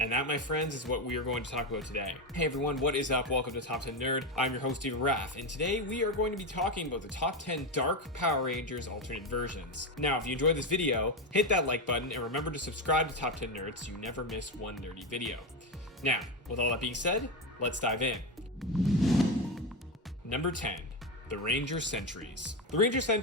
that, my friends, is what we are going to talk about today. Hey everyone, what is up? Welcome to Top 10 Nerd. I'm your host, Steven Raff, and today we are going to be talking about the top 10 Dark Power Rangers alternate versions. Now, if you enjoyed this video, hit that like button and remember to subscribe to Top 10 Nerd so you never miss one nerdy video. Now, with all that being said, let's dive in. Number 10, the Ranger Sentries. The Ranger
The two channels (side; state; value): both; normal; correlation 0.12